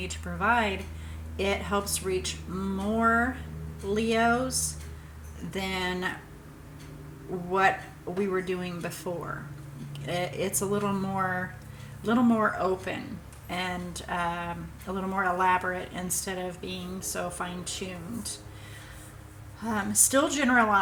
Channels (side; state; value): both; identical; correlation 1.00